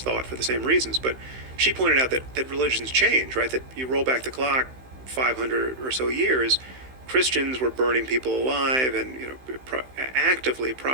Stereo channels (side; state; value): left; late; 15 ms